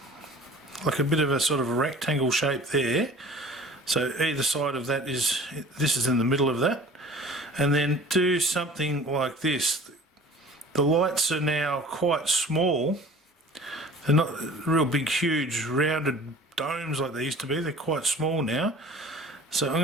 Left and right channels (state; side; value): normal; both; correlation 0.45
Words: like a bit of a sort of a rectangle shape there. So either side of that is, this is in the middle of that. And then do something like this. The lights are now quite small. They're not real big, huge, rounded domes like they used to be. They're quite small now. So I'm